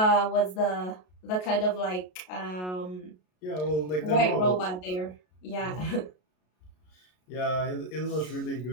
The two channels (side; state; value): right; late; 33 ms